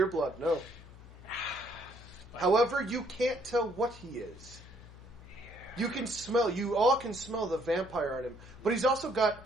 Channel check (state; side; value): noise; left; hum, 18 dB below the sound